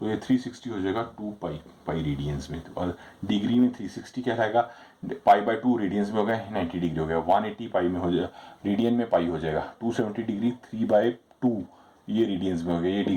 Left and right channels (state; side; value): identical; both; correlation 1.00